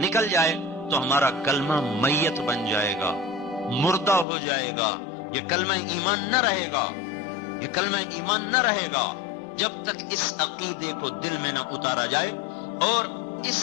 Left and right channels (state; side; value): drops out; right; at 4.2 s